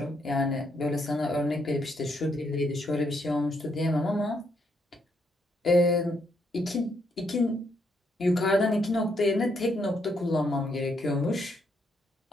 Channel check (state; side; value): normal; both; correlation 0.75